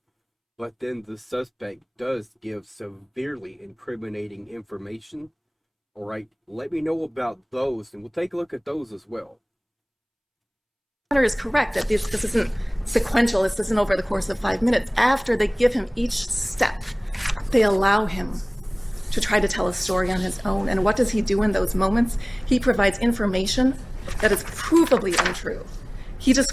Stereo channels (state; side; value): identical; both; correlation 1.00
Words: but then the suspect does give severely incriminating information, all right, let me know about those, and we'll take a look at those as well. Hunter is correct that this isn't sequential. This isn't over the course of 5 minutes. After they give him each step, they allow him to try to tell a story on his own. And what does he do in those moments? He provides information that is provably untrue. He